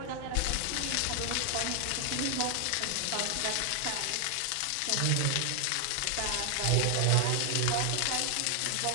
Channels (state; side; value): different; both; correlation 0.00